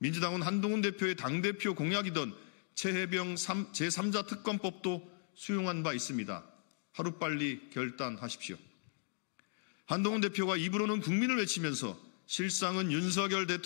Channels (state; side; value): silent; right; digital silence